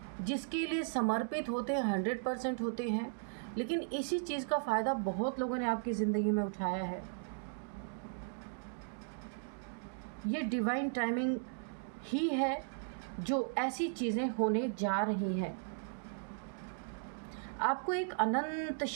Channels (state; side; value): silent; left; digital silence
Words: जिसके लिए समर्पित होते हैं, 100% होते हैं। लेकिन इसी चीज़ का फ़ायदा बहुत लोगों ने आपकी ज़िंदगी में उठाया है। ये डिवाइन टाइमिंग ही है जो ऐसी चीज़ें होने जा रही हैं। आपको एक अनंत